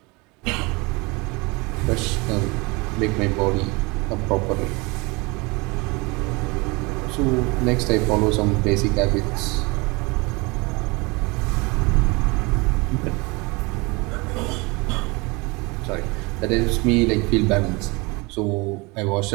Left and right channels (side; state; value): left; quieter; 26.4 dB